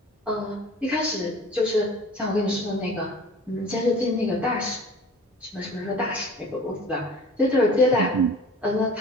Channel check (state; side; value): normal; both; correlation 0.44